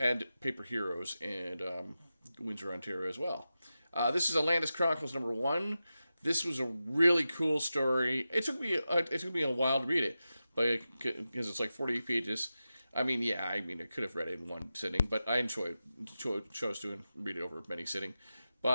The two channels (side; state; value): both; inverted; correlation -0.92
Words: Paper Heroes and Windsor, Ontario as well. This is Atlantis Chronicles #1. This was a really cool story. It took me a while to read it, but because it's like 40 pages. I could have read it in one sitting, but I chose to read it over many sitting.